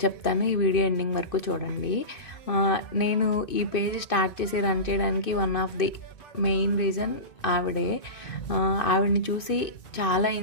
చెప్తాను. ఈ వీడియో ఎండింగ్ వరకు చూడండి. నేను ఈ పేజ్ స్టార్ట్ చేసి రన్ చేయడానికి one of the main reason ఆవిడే. ఆవిడని చూసి చాలా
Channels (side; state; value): right; late; 2.6 ms